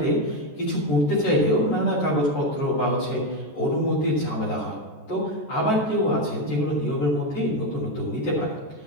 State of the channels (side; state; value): right; late; 14 ms